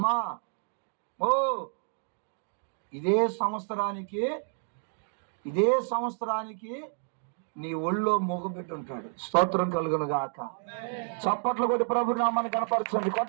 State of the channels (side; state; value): left; silent; 58 dB below the other